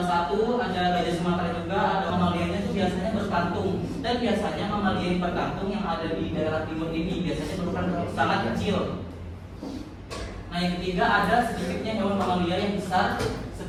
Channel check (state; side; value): identical; both; correlation 1.00